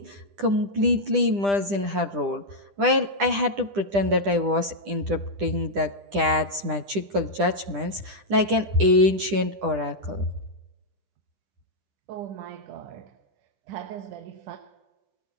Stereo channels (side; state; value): left; late; 10 ms